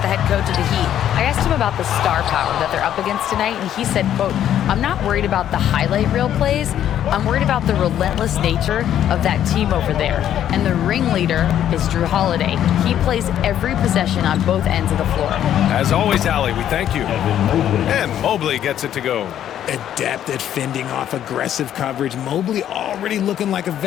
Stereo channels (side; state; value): right; quieter; 10.7 dB